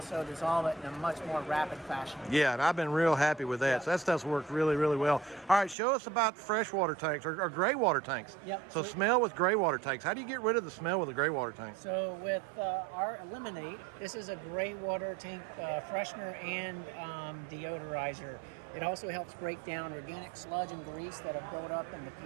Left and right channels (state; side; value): drops out; left; at 5.8 s